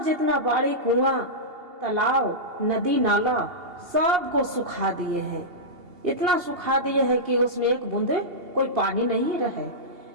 जितना बाड़ी कुआं तालाब नदी नाला सबको सुखा दिए हैं, इतना सुखा दिए हैं कि उसमें एक बूंद कोई पानी नहीं रहे।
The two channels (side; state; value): left; late; 2.8 ms